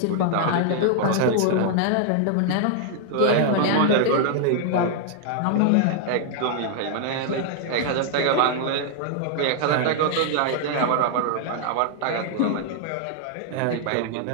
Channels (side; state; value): both; different; correlation 0.00